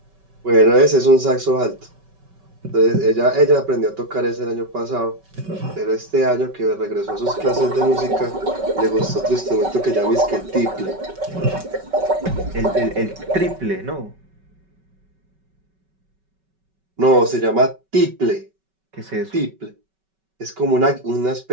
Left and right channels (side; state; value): left; late; 5.2 ms